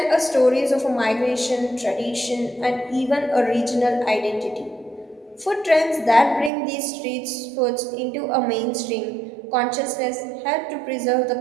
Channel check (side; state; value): left; drops out; at 6.5 s